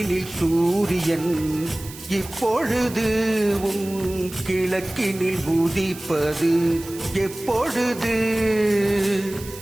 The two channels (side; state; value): right; noise; hiss, 16 dB below the sound